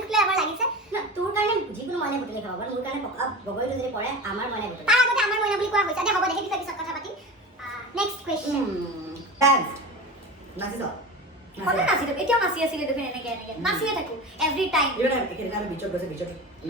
আমাৰ লাগিছে না, তোৰ কাৰণে যিকোনো মইনাই বুটলি খাব পাৰে মোৰ কাৰণে পকা বগৰীটো যদি পৰে আমাৰ মইনাই বুটলি তাৰ আগতে আমাৰ মইনা বুলি কোৱা হৈছে দে হ'ব দে সেই বিষয়ে পিছত কথা পাতিম নেক্সট কুৱেশ্যন ডান্স নাচিছ সদায় নাচিলো এতিয়াও নাচি আছিলে দেখোন এনেকে নাচিয়ে থাকো এভৰি টাইম ইভেন একেদিনা আমি বিচত গৈছে বিচত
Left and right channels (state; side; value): normal; both; correlation 0.30